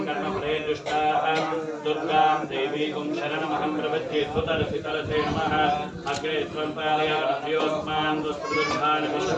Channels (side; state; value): both; identical; correlation 1.00